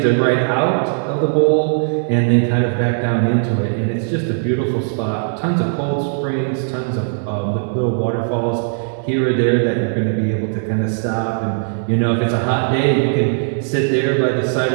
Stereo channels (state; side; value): silent; left; digital silence